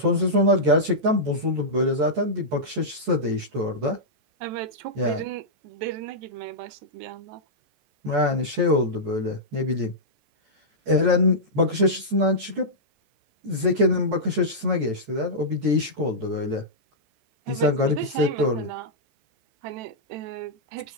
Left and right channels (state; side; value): late; left; 14 ms